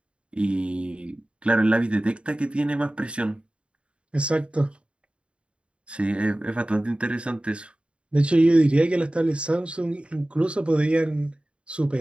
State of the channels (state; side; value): late; left; 0.057 ms